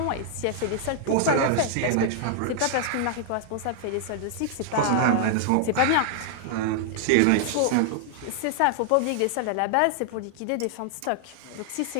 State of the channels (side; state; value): both; different; correlation -0.01